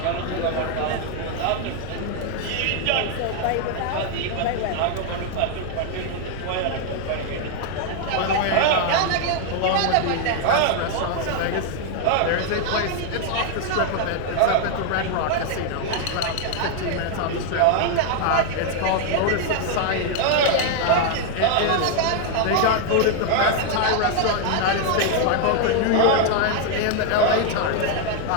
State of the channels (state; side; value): different; both; correlation 0.00